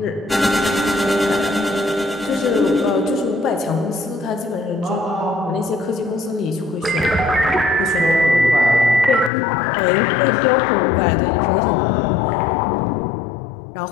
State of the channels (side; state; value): right; drops out; at 9.3 s